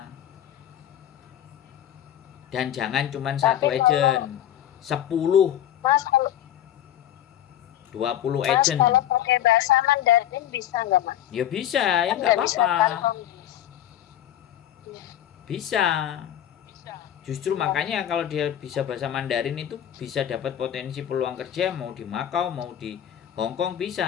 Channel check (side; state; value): right; quieter; 11.3 dB